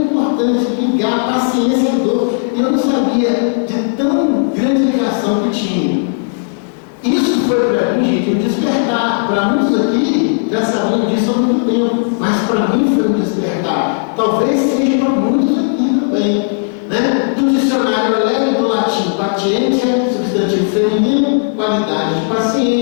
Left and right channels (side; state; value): right; silent; digital silence